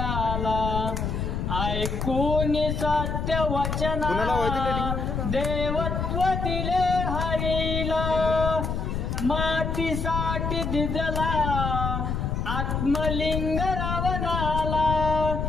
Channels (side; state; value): left; noise; rumble, 2 dB below the sound